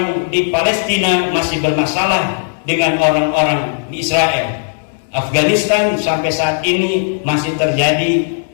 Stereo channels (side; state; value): right; silent; digital silence